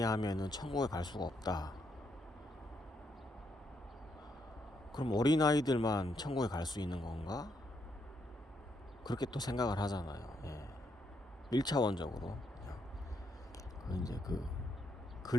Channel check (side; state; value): both; normal; correlation 0.77